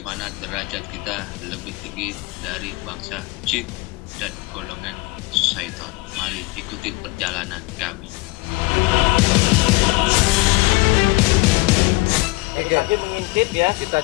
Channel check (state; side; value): quieter; right; 22.5 dB